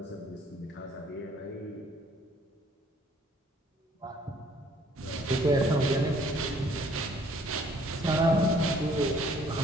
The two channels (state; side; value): normal; both; correlation 0.60